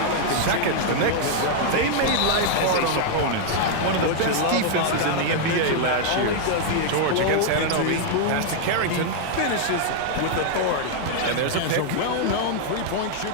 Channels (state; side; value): different; both; correlation -0.01